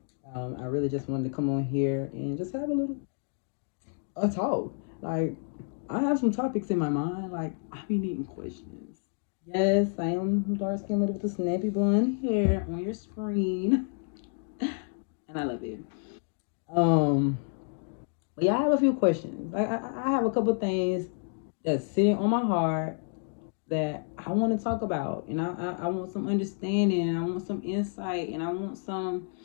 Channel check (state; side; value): silent; right; 58 dB below the other